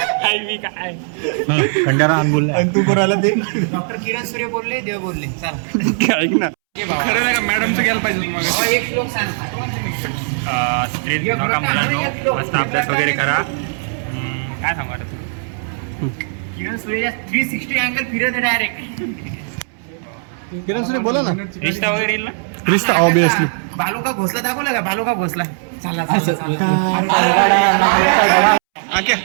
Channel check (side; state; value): left; silent; 67 dB below the other